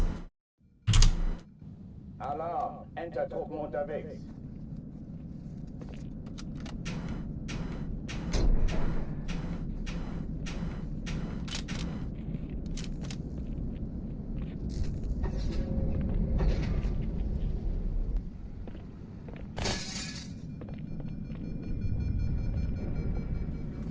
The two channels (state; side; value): identical; both; correlation 1.00